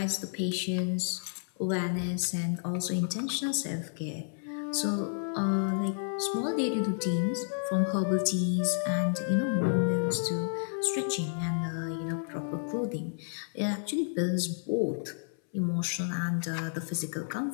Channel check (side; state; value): right; silent; 57 dB below the other